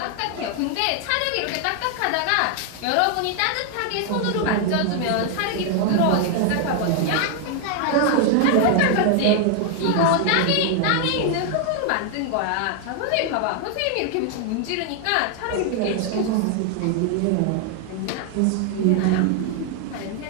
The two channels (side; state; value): both; different; correlation 0.00